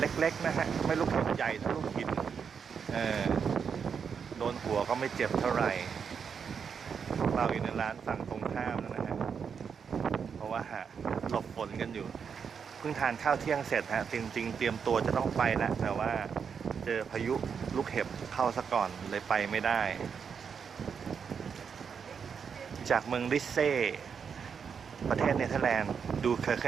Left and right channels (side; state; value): left; quieter; 6.6 dB